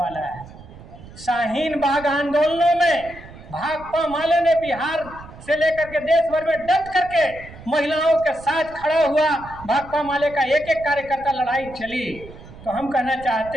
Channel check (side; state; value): right; noise; rumble, 18 dB below the sound